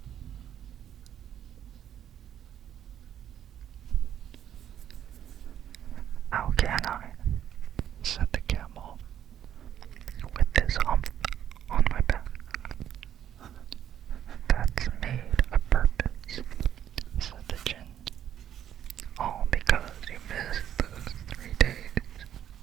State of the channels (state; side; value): quieter; left; 10.3 dB